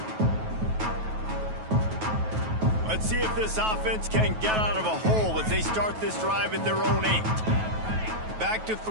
Let's see if this offense can get out of a hole as they start this drive at their own 8. Back to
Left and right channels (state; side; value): late; left; 9.3 ms